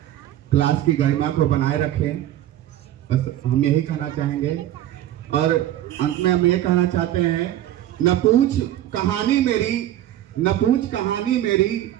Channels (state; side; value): quieter; left; 12.8 dB